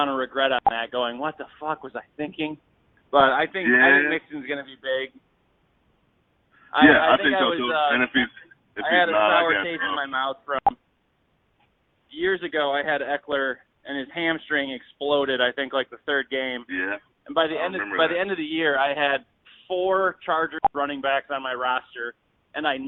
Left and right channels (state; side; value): identical; both; correlation 1.00